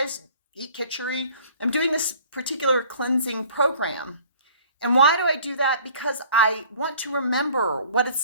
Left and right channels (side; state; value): both; inverted; correlation -0.52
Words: eat khichdi. I'm doing this particular cleansing program. And why do I do that? Because I want to remember what